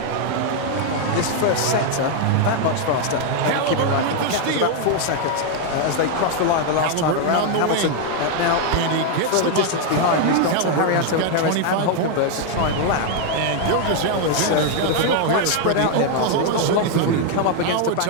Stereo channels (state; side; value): different; both; correlation 0.00